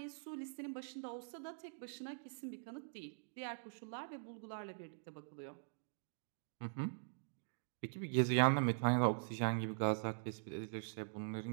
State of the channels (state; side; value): silent; left; digital silence